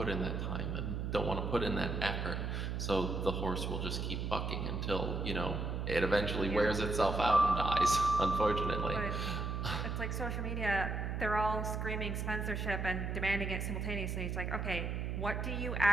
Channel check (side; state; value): right; noise; hum, 2 dB below the sound